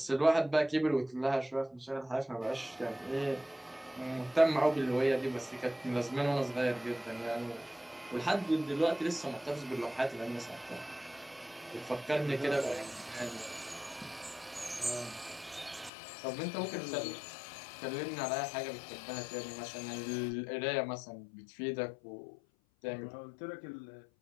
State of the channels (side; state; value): right; drops out; at 15.9 s